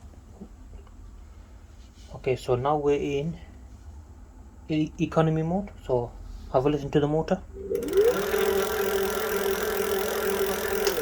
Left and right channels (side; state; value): both; identical; correlation 1.00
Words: Okay, so now we're in economy mode. So have a listen to the motor.